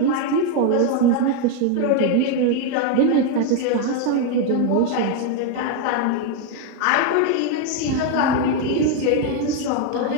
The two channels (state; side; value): different; both; correlation 0.01